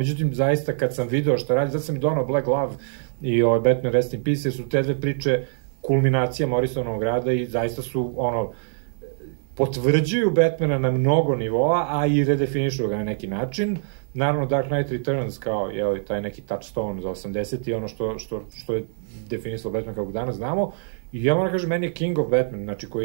zaista kad sam video šta radi, zato sam i donao Black Glove i Batman Rest in Peace, su te dve priče kulminacija Morrisonovog rada i zaista su, potvrđuju Batmana na mnogo nivoa, a i redefinišu ga na neki način. Naravno, Dark Knight Returns kao, taj neki touchstone za 80 i ono što je definisalo Batman kako danas znamo. I ja moram kažem, meni je King of Batman, znači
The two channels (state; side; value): silent; left; digital silence